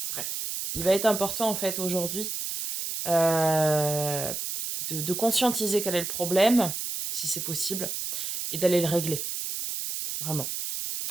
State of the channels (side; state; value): right; noise; hiss, 4 dB below the sound